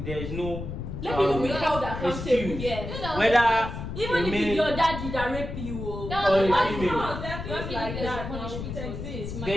is no. Let people be held accountable. excuse. Yes. Whether Even a if male- it's your daddy that rape you, oh. That or was a what female. No, there are things Don't like think there's a that. punishment Now, for it it. exists. It's There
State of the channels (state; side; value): noise; left; rumble, 7 dB below the sound